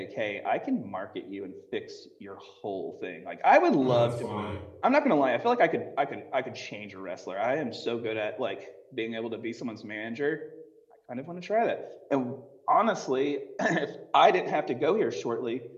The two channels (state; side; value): identical; both; correlation 1.00